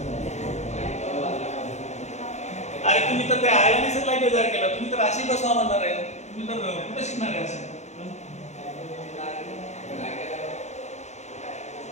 अरे तुम्ही तर ते आयोनायझर लाईट बेजार केला, तुम्ही तर अशी बसवा म्हणणार आहे, तुम्ही तर कुठे शिकणार आहे असं?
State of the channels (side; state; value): right; late; 0.33 ms